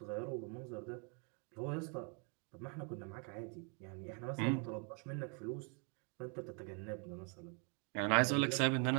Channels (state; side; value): quieter; left; 37.9 dB